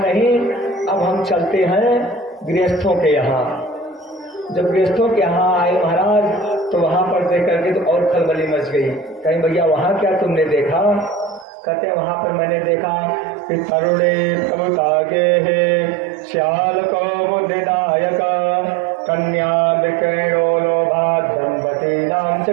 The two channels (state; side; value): drops out; left; at 11.5 s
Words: अब हम चलते हैं गृहस्थों के यहाँ। जब गृहस्थों के यहाँ आए महाराज तो वहां पर देख करके तो और खलबली मच गई। कहीं भैया वहां क्या तुमने देखा, कहते हैं वहां पर मैंने देखा कि तरुणे प्रभुतागे है श्याल को बुद्धिदायक कन्या विक्रयो लोभात दंपति नाम